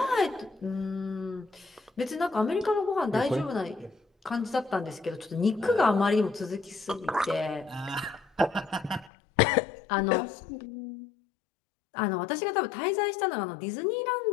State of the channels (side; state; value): right; drops out; at 9.1 s